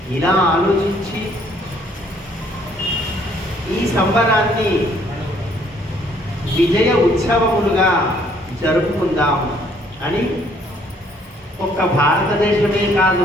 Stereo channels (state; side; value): normal; both; correlation 0.64